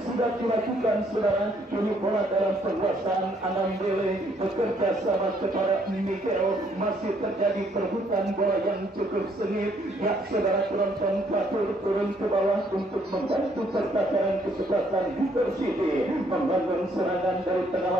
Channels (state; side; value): normal; both; correlation 0.67